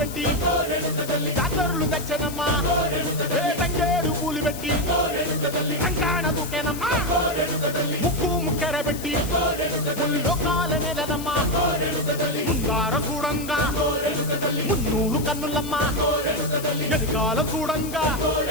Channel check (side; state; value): left; noise; hiss, 12 dB below the sound